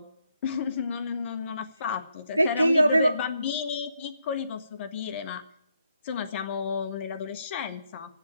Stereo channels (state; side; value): inverted; both; correlation -0.78